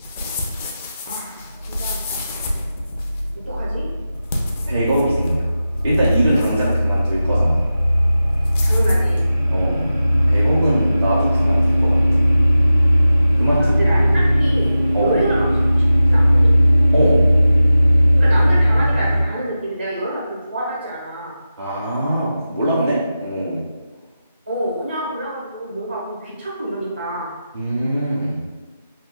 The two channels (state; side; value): inverted; both; correlation -0.93